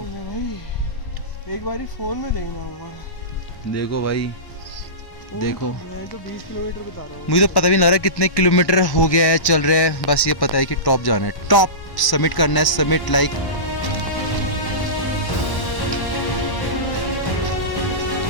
भाई, एक बारी फोन में देखना होगा। देखो भाई, देखो मैं तो 20 किलोमीटर बता रहा हूँ। मुझे तो पता भी नहीं लग रहा कितने किलोमीटर हो गया है, चल रहे हैं। बस ये पता है कि टॉप जाना है, टॉप समिट करना है, समिट लाइक।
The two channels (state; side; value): late; right; 1.1 ms